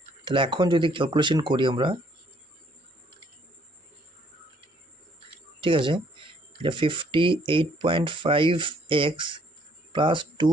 তাহলে এখন যদি ক্যালকুলেশন করি আমরা, ঠিক আছে, এটা 58.5x plus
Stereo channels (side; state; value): both; normal; correlation 0.64